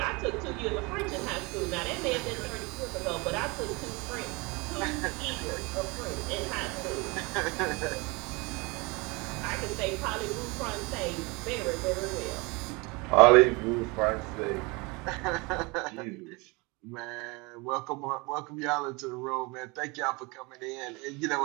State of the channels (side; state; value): left; quieter; 26.7 dB